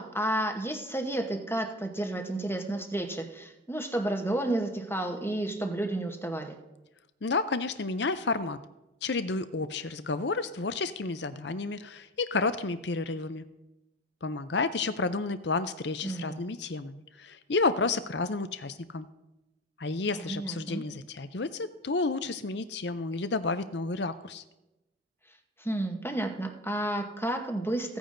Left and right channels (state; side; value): normal; both; correlation 0.28